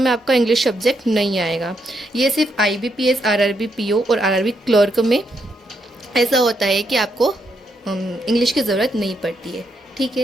में आपका इंग्लिश सब्जेक्ट नहीं आएगा। ये सिर्फ IBPS RRB PO और RRB क्लर्क में ऐसा होता है कि आपको इंग्लिश की ज़रूरत नहीं पड़ती है। ठीक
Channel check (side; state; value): both; normal; correlation 0.78